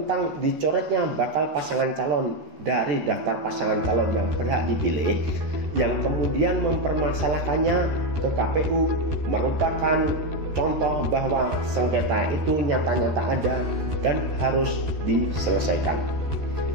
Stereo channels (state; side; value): late; left; 13 ms